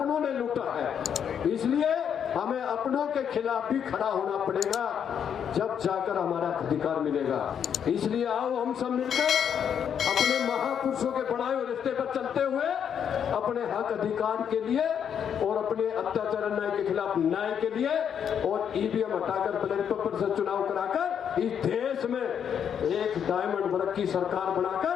ने लूटा है। इसलिए हमें अपनों के खिलाफ भी खड़ा होना पड़ेगा, जब जाकर हमारा अधिकार मिलेगा। इसलिए आओ हम सब मिलकर अपने महापुरुषों के बढ़ाए हुए रास्ते पर चलते हुए अपने हक अधिकार के लिए और अपने अत्याचार अन्याय के खिलाफ न्याय के लिए और ईवीएम हटाकर बैलेट पेपर से चुनाव कराकर इस देश में एक डायमंड वर्ग की सरकार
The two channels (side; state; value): right; quieter; 8.2 dB